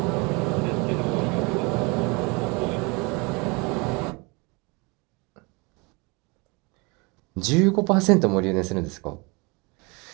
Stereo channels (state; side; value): quieter; left; 28.2 dB